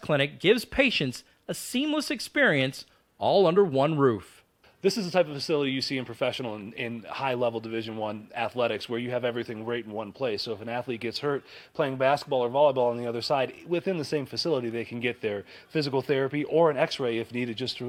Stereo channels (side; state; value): both; identical; correlation 1.00